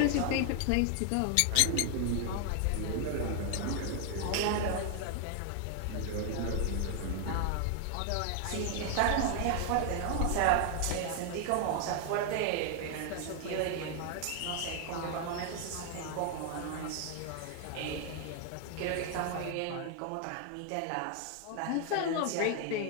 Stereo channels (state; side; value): different; both; correlation 0.00